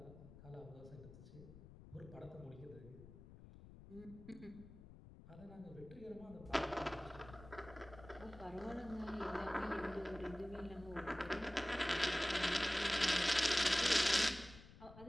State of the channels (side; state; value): left; noise; rumble, 17 dB below the sound